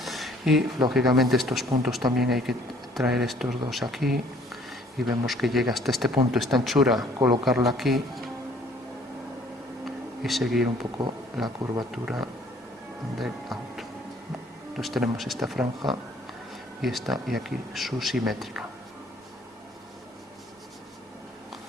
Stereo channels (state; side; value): normal; both; correlation 0.59